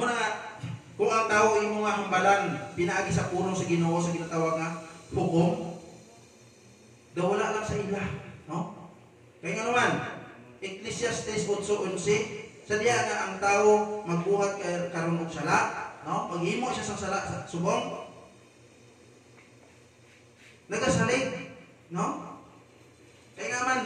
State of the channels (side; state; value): both; identical; correlation 1.00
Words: na nga, kung ang tao imo nga hambalan pinaagi sa pulong sa Ginoo sa ginatawag nga hukom, daw wala lang sa ila, no? Kaya nga naman Ecclesiastes 8:11 sa diya nga ang tao magbuhat karon og sala, no? Paghimo siya sa sala sa subong nagasalig, no? Kaya nga man